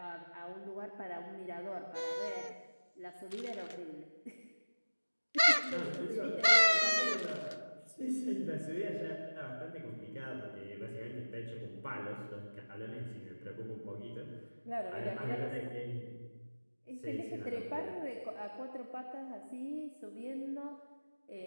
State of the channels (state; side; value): inverted; both; correlation -1.00